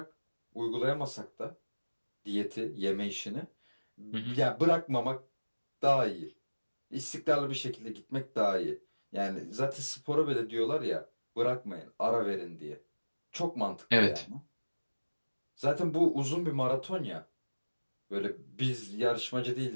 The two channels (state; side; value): inverted; both; correlation -1.00